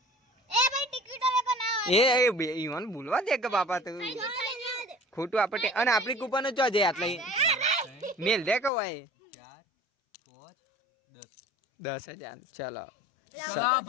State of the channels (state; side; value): drops out; right; at 8.7 s